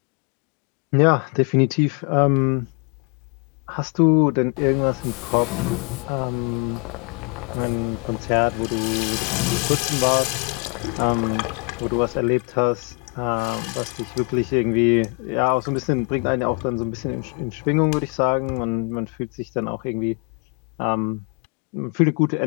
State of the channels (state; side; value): quieter; right; 34.8 dB